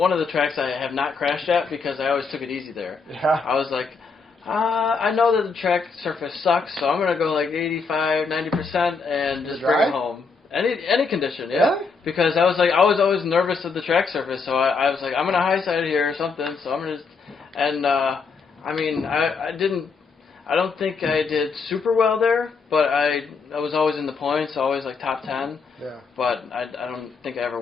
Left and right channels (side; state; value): right; quieter; 4.8 dB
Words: the tracks I have not crashed at because I always took it easy there. I was like, I know that the track surface sucks, so I'm gonna go like 85, 90% and just bring it home. Any condition, Really? Because I was always nervous of the track surface, so I was like, I'm gonna high side here or something. So I'm gonna, and I mean, I don't think I did super well there, but I was always in the points, always like top 10. But I don't think I ever